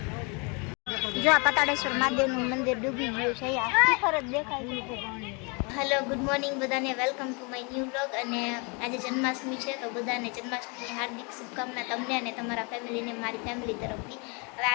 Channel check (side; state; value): right; quieter; 32.3 dB